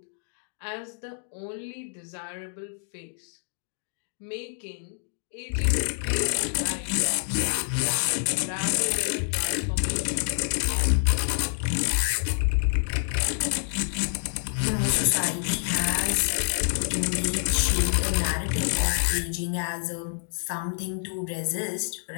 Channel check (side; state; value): right; silent; digital silence